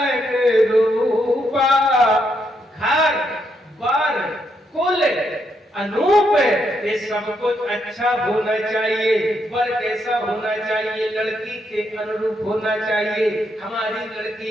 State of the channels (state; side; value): normal; both; correlation 0.78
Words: रूपा। घर बर कुल अनूप, ये सब कुछ अच्छा होना चाहिए। वर कैसा होना चाहिए? लड़की के अनुरूप होना चाहिए। हमारी